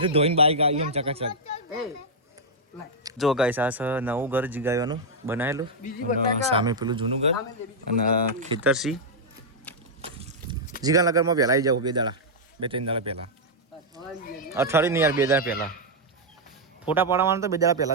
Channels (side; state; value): both; normal; correlation -0.04